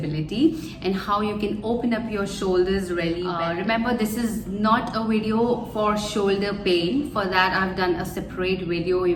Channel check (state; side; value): identical; both; correlation 1.00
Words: and how you can open up your shoulders really well. Remember, this is not a video for shoulder pain. For that I've done a separate video,